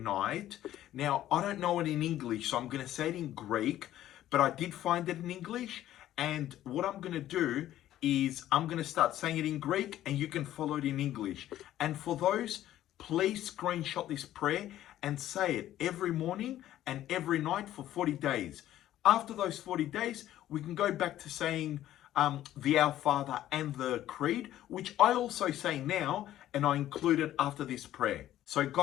Now, I don't know it in English, so I'm going to say it in Greek, but I did find it in English. And what I'm going to do is I'm going to start saying it in Greek and you can follow it in English. And for those, please screenshot this prayer and say it every morning and every night for 40 days. After those 40 days, we can go back to saying the Our Father and the Creed, which I also say now, and I include it after this prayer. So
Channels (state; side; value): quieter; right; 13.0 dB